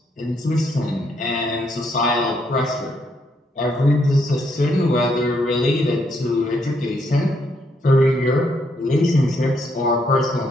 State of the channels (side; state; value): both; normal; correlation 0.74